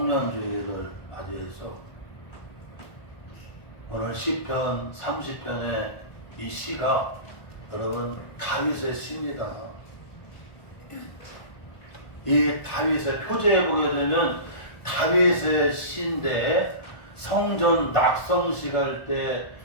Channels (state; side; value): late; right; 1.5 ms